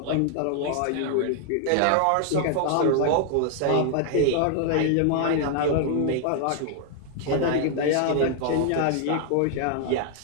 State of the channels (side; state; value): both; different; correlation 0.00